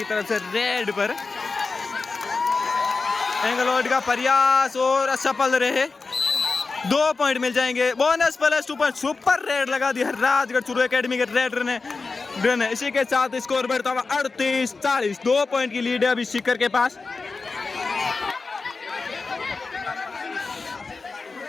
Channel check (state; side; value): quieter; right; 4.1 dB